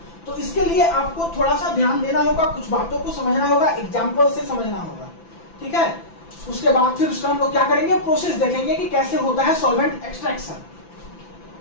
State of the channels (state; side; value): late; right; 5.9 ms